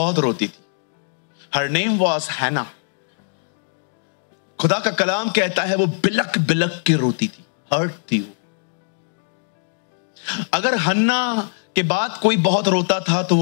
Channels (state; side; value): silent; right; digital silence